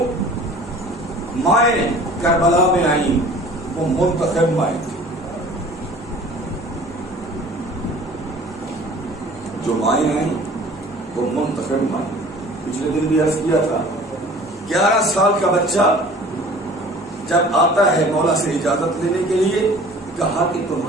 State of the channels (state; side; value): normal; both; correlation 0.47